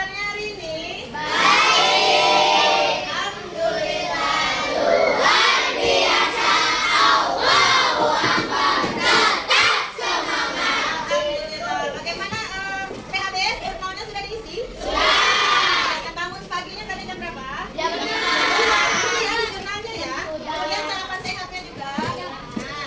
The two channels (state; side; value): identical; both; correlation 1.00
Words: hari ini? Baik. Alhamdulillah. Luar biasa. Allahu Akbar. Tetap semangat. Alhamdulillah. Bagaimana PHBS jurnalnya sudah diisi? Sudah. Bangun paginya tadi jam berapa? Jam 6. Iya, jurnalnya ya. Kemudian sarapan sehatnya juga.